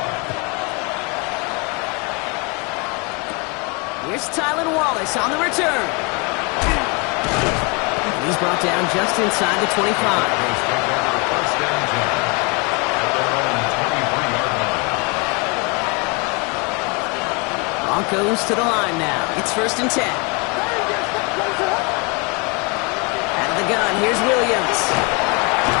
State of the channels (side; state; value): right; quieter; 31.2 dB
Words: Here's Tylan Wallace on the return. He's brought down just inside the 25. Broncos to the line now. It's 1st and 10. Out of the gun, here's Williams.